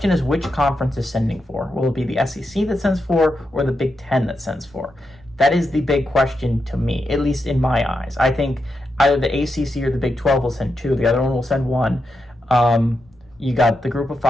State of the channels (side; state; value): both; normal; correlation 0.86